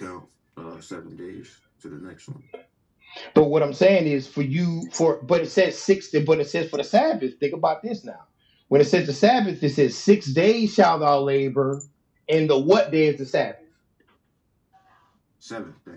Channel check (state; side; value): identical; both; correlation 1.00